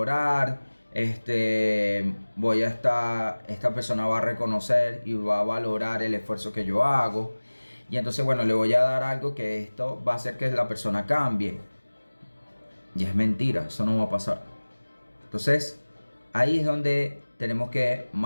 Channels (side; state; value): both; inverted; correlation -1.00